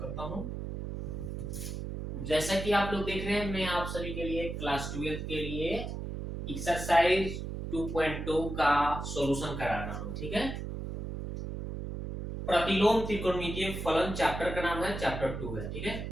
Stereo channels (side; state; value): right; noise; hum, 6 dB below the sound